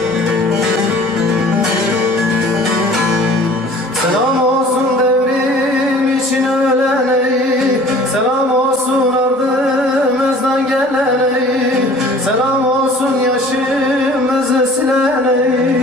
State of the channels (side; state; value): both; normal; correlation 0.49